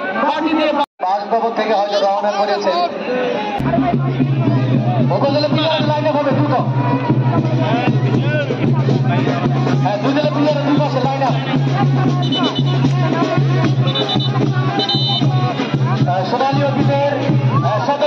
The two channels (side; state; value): both; identical; correlation 1.00